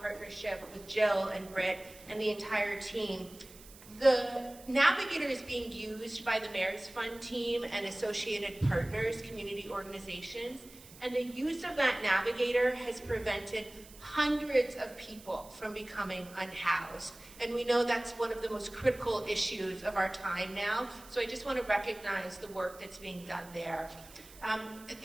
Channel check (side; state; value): right; noise; hiss, 20 dB below the sound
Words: with Jill and Britt and the entire team. The Navigator is being used by the Mayor's Fund team and associated partners, community organizations, and the use of that Navigator has prevented hundreds of people from becoming unhoused. And we know that's one of the most critical issues of our time now, so I just want to recognize the work that's being done there.